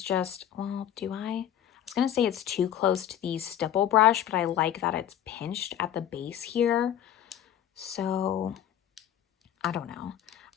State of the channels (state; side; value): quieter; right; 10.7 dB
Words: just, well, do I? I was gonna say it's too close to the stipple brush, but I like that it's pinched at the base here. So I don't know.